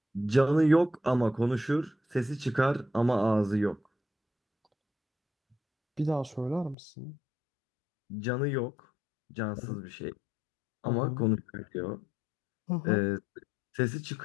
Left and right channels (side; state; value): right; drops out; at 6.8 s